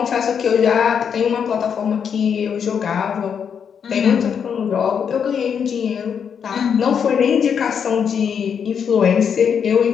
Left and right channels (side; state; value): right; quieter; 7.3 dB